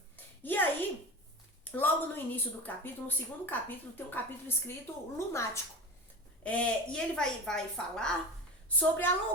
E aí, logo no início do capítulo, no segundo capítulo, tem um capítulo escrito Lunático. E ele vai falar sobre a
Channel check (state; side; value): normal; both; correlation 0.30